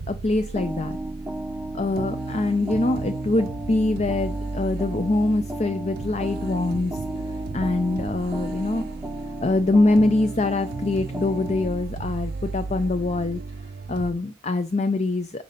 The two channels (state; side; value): normal; both; correlation 0.80